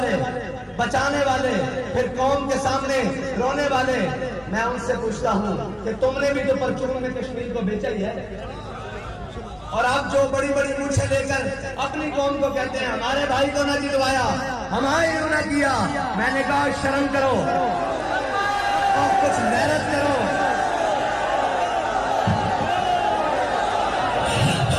بچانے والے پھر قوم کے سامنے رونے والے میں ان سے پوچھتا ہوں کہ تم نے بھی تو پرچون میں کشمیر کو بیچا ہی ہے اور آپ جو بڑی بڑی مونچھیں لے کر اپنی قوم کو کہتے ہیں ہمارے بھائی کو نہ جلوایا ہمارے نہ کیا میں نے کہا شرم کرو اور کچھ محنت کرو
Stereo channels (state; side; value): identical; both; correlation 1.00